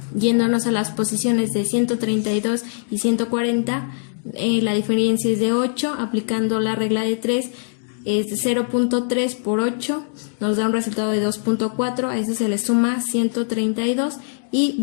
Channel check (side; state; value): right; silent; digital silence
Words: Yéndonos a las posiciones de 132 y 140, la diferencia es de 8. Aplicando la regla de 3 es de 0.3 por 8, nos da un resultado de 2.4. A ese se le suma 132 y